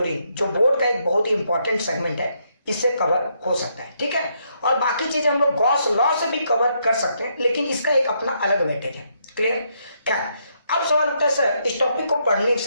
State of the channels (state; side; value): inverted; both; correlation -0.75